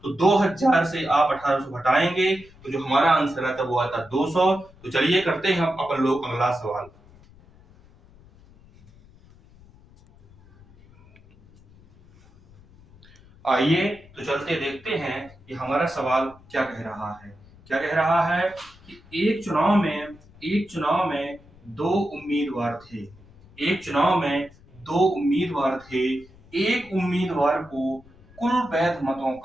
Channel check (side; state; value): left; noise; rumble, 25 dB below the sound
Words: तो 2000 से आप 1800 घटाएंगे तो जो हमारा आंसर आता वो आता 200। तो चलिए करते हैं हम अपन लोग अगला सवाल। आइए तो चलते देखते हैं कि हमारा सवाल क्या कह रहा है। क्या कह रहा है कि एक चुनाव में दो उम्मीदवार थे। एक चुनाव में दो उम्मीदवार थे। एक उम्मीदवार को कुल वैध मतों